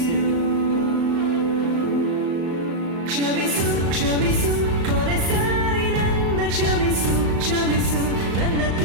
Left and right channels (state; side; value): late; left; 35 ms